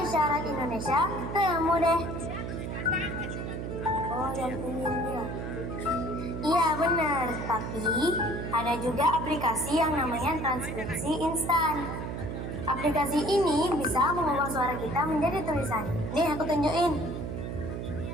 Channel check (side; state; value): right; noise; hum, 5 dB below the sound